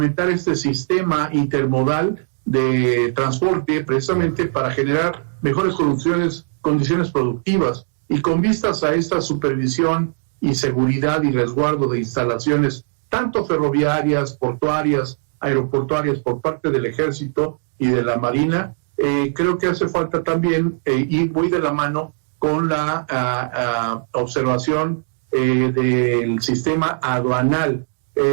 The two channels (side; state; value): left; silent; digital silence